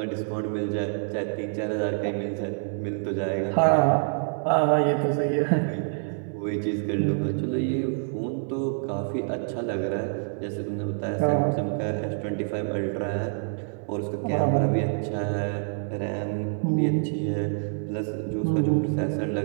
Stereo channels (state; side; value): silent; left; 60 dB below the other